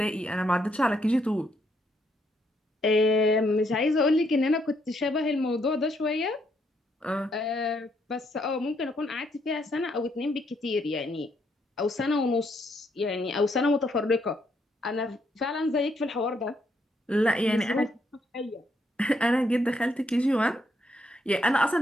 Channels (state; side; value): normal; both; correlation 0.74